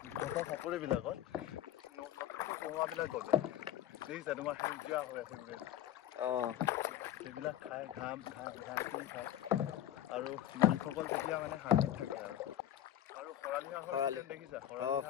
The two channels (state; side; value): quieter; right; 11.9 dB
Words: চাপৰিবিলাকত নতুনকৈ কমোৱাবিলাক গজে, দেখিছা তোমাৰ সেউজীয়া হৈ আছে গোটেই। সেইবিলাক খায়, ঘাঁহ খায় আৰু মালিকসকল তেতিয়া মানে শান্তিত থাকে। আৰু খৰালি দেখিছা,